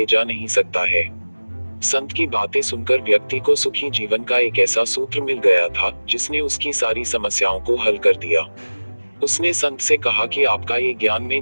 जा नहीं सकता है। संत की बातें सुनकर व्यक्ति को सुखी जीवन का एक ऐसा सूत्र मिल गया था जिसने उसकी सारी समस्याओं को हल कर दिया। उसने संत से कहा कि आपका ये ज्ञान मैं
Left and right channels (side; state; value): both; inverted; correlation -1.00